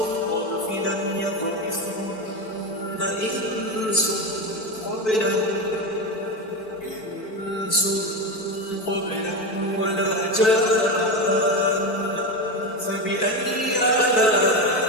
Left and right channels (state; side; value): late; right; 4.6 ms